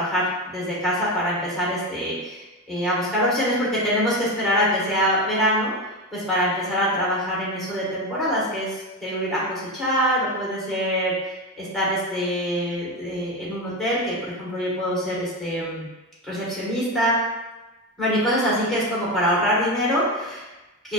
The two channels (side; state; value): both; normal; correlation 0.17